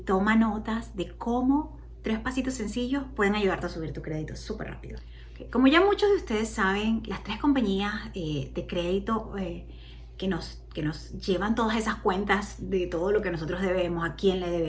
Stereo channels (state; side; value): identical; both; correlation 1.00